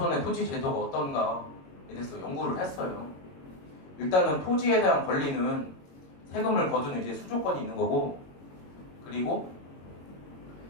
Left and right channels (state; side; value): late; right; 22 ms